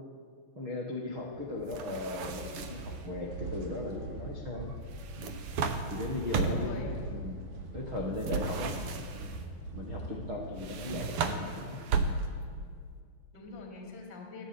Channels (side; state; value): left; late; 7.0 ms